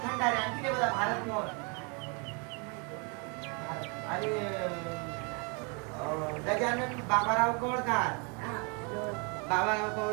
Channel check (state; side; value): quieter; left; 34.0 dB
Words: खंडारे. आणखी बघा भारत मोहन. आणि गजानन बाबाराव कवळकार. बाबाराव